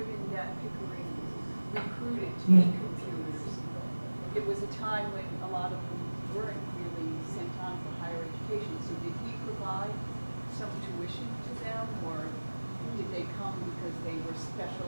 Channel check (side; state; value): both; inverted; correlation -1.00